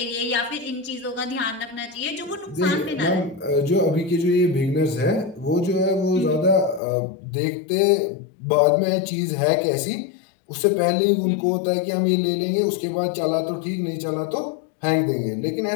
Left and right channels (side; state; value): right; drops out; at 6.8 s